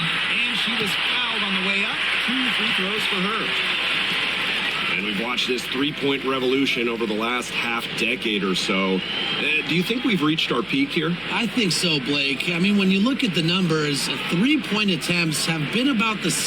she was fouled on the way up. 2 free throws for her. And we've watched this three-point revolution over the last half-decade or so. Do you think we've reached our peak here? I think so, Blake. I mean, when you look at the numbers, 3-point attempts have been about the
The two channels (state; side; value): noise; right; hum, 26 dB below the sound